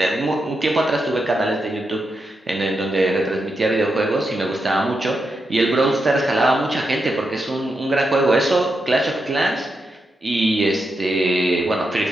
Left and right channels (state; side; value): normal; both; correlation 0.85